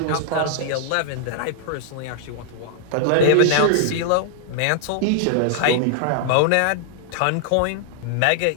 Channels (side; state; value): both; different; correlation -0.01